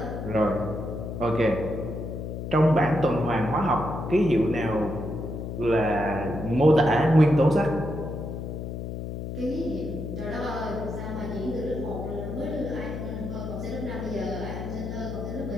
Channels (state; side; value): noise; left; hum, 6 dB below the sound